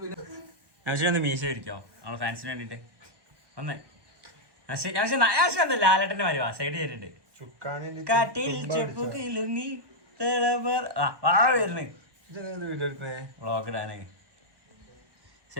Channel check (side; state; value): left; late; 1.1 ms